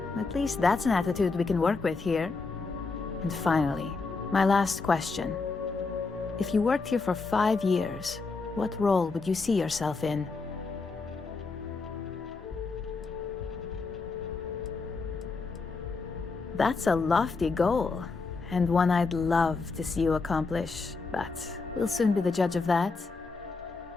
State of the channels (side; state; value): right; quieter; 4.2 dB